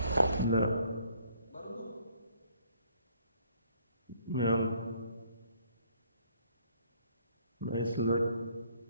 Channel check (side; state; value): both; inverted; correlation -0.64